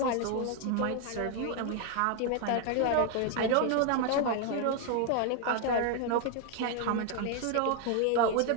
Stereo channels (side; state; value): both; different; correlation 0.00